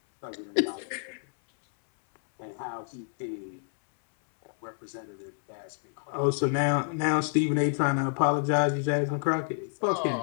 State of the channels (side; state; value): right; silent; 59 dB below the other